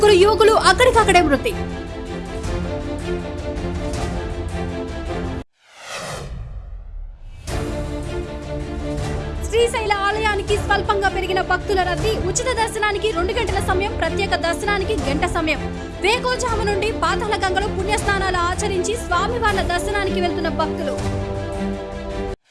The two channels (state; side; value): identical; both; correlation 1.00